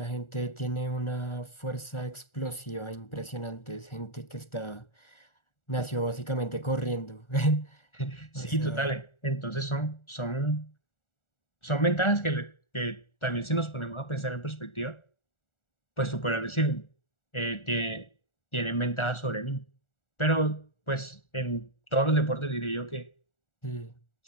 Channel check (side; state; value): right; late; 1.4 ms